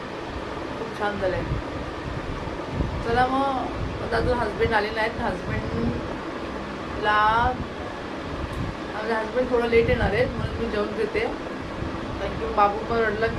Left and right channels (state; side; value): identical; both; correlation 1.00